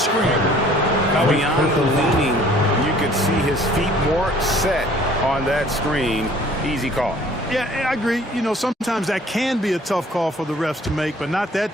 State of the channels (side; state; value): both; normal; correlation 0.54